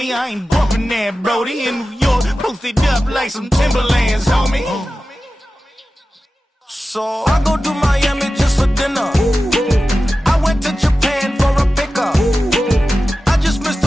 I ain't bumping that, Brody. In New York, posted up like some Timberlands, homie. So I go to Miami just for dinner. I went to Japan for a pickup. I just missed a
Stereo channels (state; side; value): normal; both; correlation 0.94